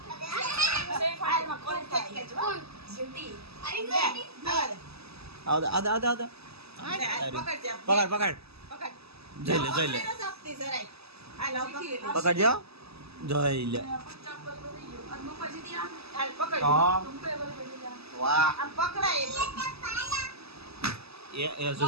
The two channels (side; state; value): left; late; 0.78 ms